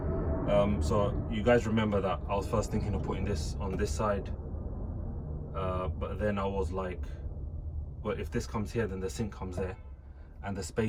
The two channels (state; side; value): identical; both; correlation 1.00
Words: So you guys remember that I was first thinking of putting this on this side, but then I was like, well, if this comes here then the sink comes there, and the